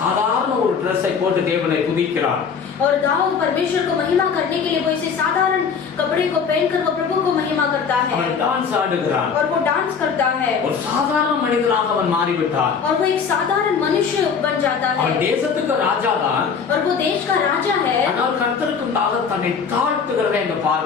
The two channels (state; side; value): quieter; right; 6.2 dB